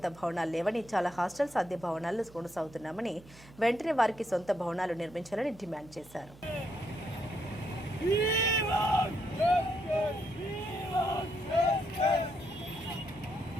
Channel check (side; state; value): right; noise; hum, 22 dB below the sound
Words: భవనాలు లేవని, చాలా హాస్టల్స్ అద్దె భవనాల్లో కొనసాగుతున్నామని, వెంటనే వారికి సొంత భవనాలు నిర్మించాలని డిమాండ్ చేశారు.